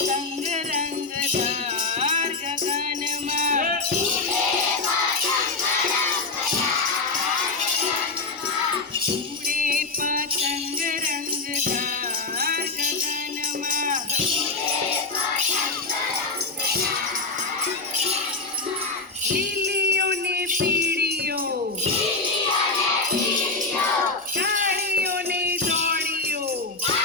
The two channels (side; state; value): right; quieter; 3.6 dB